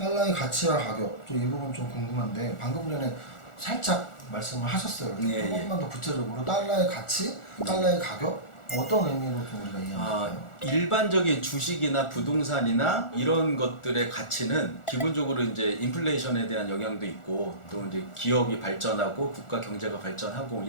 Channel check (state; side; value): late; right; 1.4 ms